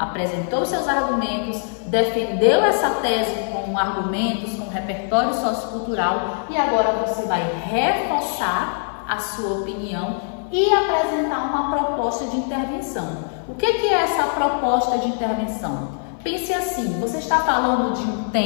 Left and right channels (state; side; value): silent; right; 56 dB below the other